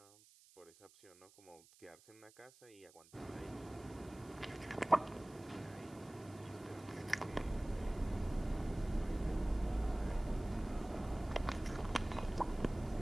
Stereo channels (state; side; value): noise; right; hiss, 24 dB below the sound